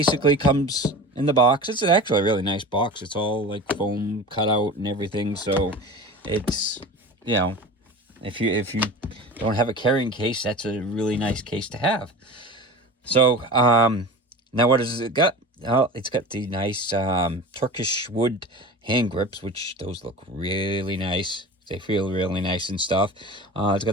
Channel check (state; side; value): normal; both; correlation 0.34